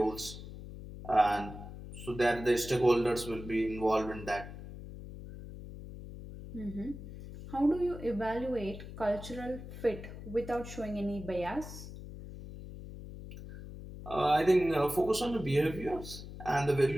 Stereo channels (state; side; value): noise; left; hum, 12 dB below the sound